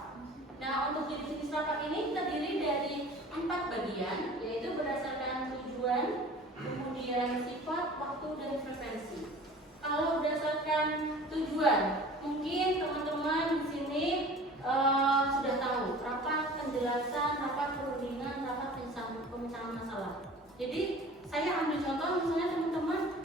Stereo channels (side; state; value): both; normal; correlation 0.43